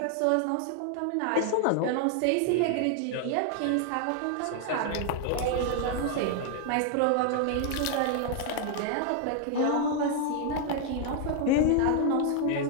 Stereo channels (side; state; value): both; different; correlation 0.00